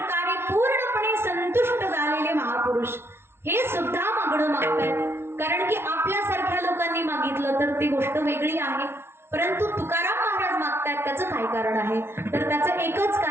पूर्णपणे संतुष्ट झालेले महापुरुष हे सुद्धा मागणं मागतायत. कारण की आपल्यासारख्या लोकांनी मागितलं तर ती गोष्ट वेगळी आहे, परंतु तुकाराम महाराज मागतायत त्याचं काय कारण आहे? तर त्याचं एकच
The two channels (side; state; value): left; late; 0.12 ms